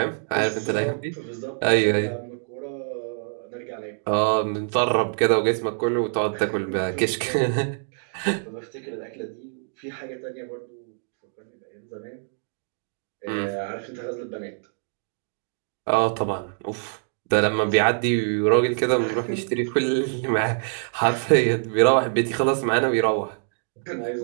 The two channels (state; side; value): silent; left; digital silence